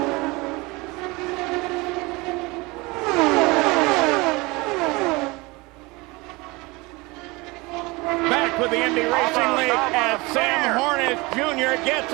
Back with the Indy Racing League as Sam Hornish Jr. gets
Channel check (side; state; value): left; quieter; 24.1 dB